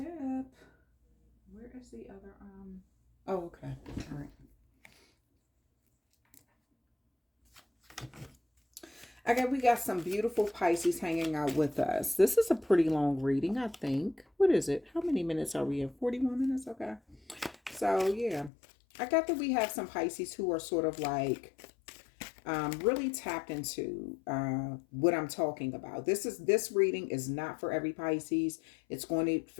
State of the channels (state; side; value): drops out; right; at 18.5 s